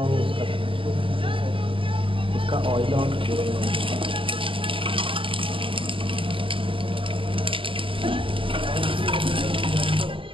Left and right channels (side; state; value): left; late; 0.25 ms